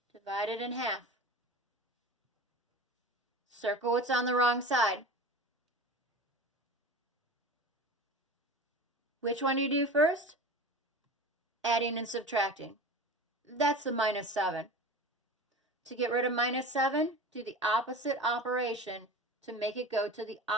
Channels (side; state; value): both; normal; correlation 0.34